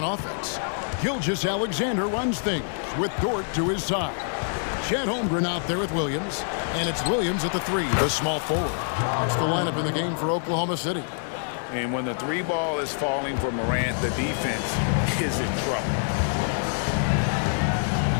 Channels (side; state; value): right; silent; digital silence